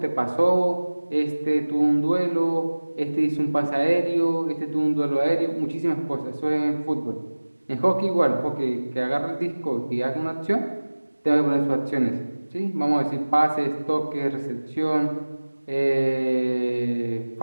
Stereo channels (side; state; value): both; inverted; correlation -1.00